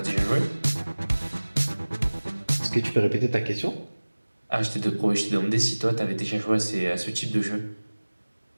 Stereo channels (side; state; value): both; inverted; correlation -1.00